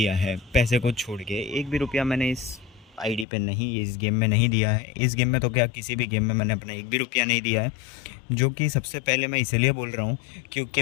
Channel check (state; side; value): drops out; right; at 3.2 s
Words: है। पैसे को छोड़ के एक भी रुपया मैंने इस आईडी पे नहीं, इस गेम में नहीं दिया है। इस गेम में तो क्या, किसी भी गेम में मैंने अपना एक भी रुपया नहीं दिया है। जो कि सबसे पहले मैं इसलिए बोल रहा हूँ